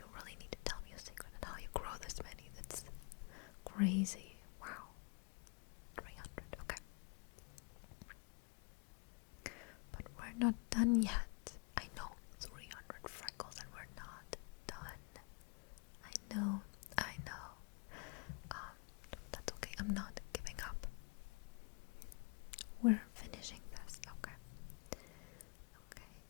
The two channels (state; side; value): quieter; right; 33.7 dB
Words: really need to tell me a secret on how you grow this many. That's crazy. Wow. 300. Okay. But we're not done yet. I know 300 freckles and we're not done. I know. That's okay. I'm not giving up. We're finishing this. Okay.